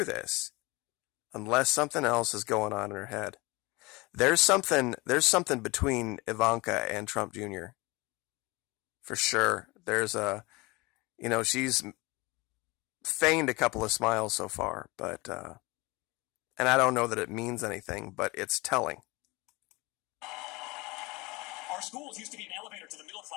this, unless something else is going on in her head. There's something between Ivanka and Trump Jr. For sure. There's she's feigned a couple of smiles so far, but, and I don't know that it means anything, but it's telling. Our schools used to be an elevator to the middle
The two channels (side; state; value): right; quieter; 24.1 dB